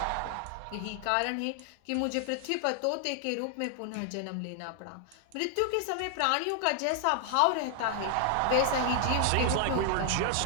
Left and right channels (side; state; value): both; different; correlation 0.00